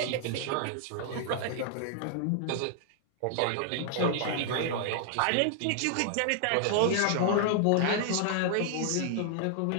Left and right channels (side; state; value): both; different; correlation 0.00